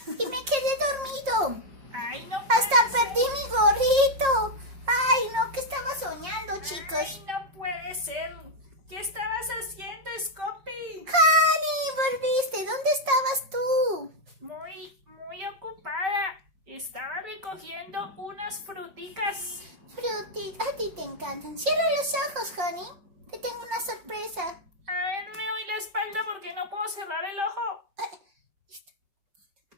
Y me quedé dormido. Ay, no Hasta puede perdí mi gorrito. Ay, no, ¿qué estaba soñando, ser. chicos? Ay, no puede ser. ¿Qué estabas haciendo, Scopy? Honey, volviste. ¿Dónde estabas tú? Muy ocupada. Estaba recogiendo unas fruticas. Fruti, a ti te encantan. Cierra los ojos, Honey. Te tengo una sorpresa. A ver, me doy la espalda porque no puedo cerrar el ojo. Listo.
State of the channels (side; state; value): left; late; 5.5 ms